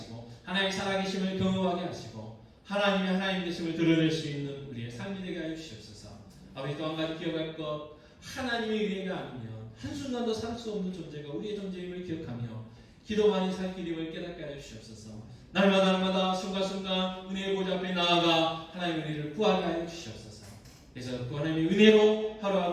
하나님의 살아계심을 경험하게 하시고 하나님의 하나님 되심을 드러낼 수 있는 우리의 삶이 되게 하여 주시옵소서. 아버지, 또 한 가지 기억할 것, 하나님의 은혜가 아니면 한순간도 살 수 없는 존재가 우리의 존재임을 기억하며 기도만이 살 길임을 깨닫게 하여 주시옵소서. 날마다 순간순간 은혜의 보좌 앞에 나아가 하나님의 은혜를 구하게 하여 주시옵소서. 그래서 그 하나님의 은혜로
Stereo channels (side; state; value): both; identical; correlation 1.00